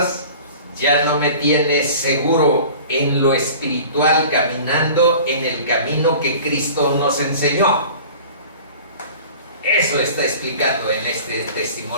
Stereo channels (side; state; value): both; inverted; correlation -0.43